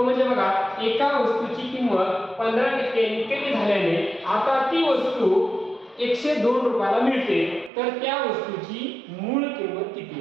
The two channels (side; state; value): left; drops out; at 7.7 s